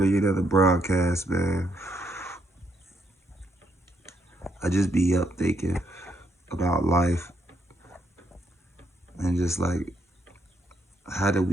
another broadcast, man. I just be up thinking about life and just like, how did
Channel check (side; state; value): both; normal; correlation 0.74